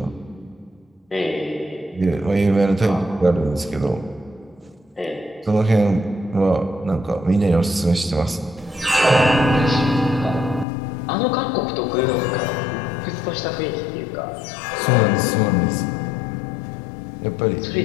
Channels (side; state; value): right; drops out; at 10.7 s